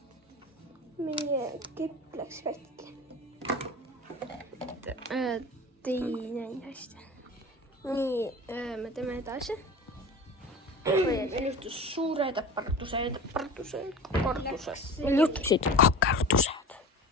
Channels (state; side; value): normal; both; correlation 0.35